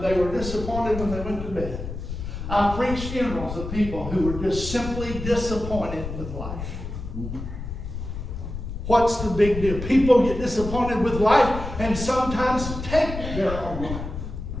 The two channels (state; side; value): noise; left; rumble, 7 dB below the sound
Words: they were disappointed when they went to bed. I preached funerals of people who were just simply disappointed with life. What's the big deal? People get disappointed with life and sometimes take their own life.